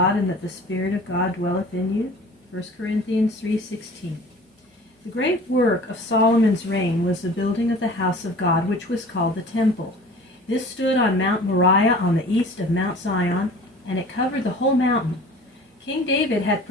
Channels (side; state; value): both; normal; correlation 0.44